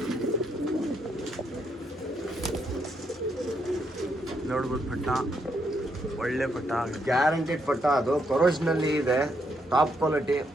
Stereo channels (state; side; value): normal; both; correlation 0.77